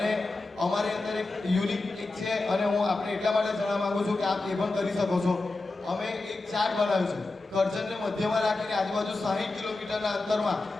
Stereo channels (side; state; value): right; quieter; 3.2 dB